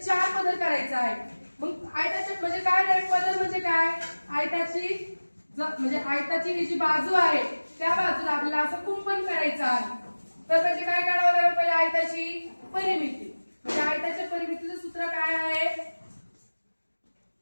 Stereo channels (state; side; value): inverted; both; correlation -1.00